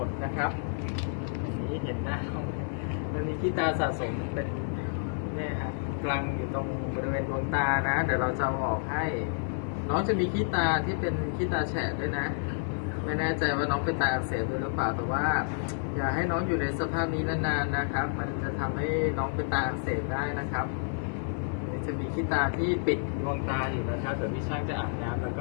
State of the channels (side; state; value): right; silent; 58 dB below the other